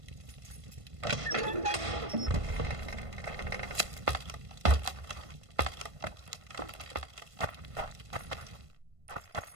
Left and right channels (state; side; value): late; left; 1.5 ms